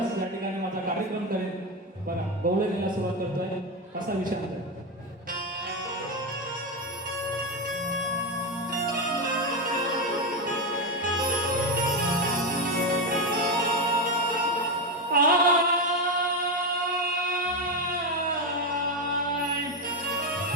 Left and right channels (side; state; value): both; normal; correlation 0.11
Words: या ठिकाणी माझा कार्यक्रम करेल. बघा गौरीला सुरुवात करतोय, कसा विषय आहे.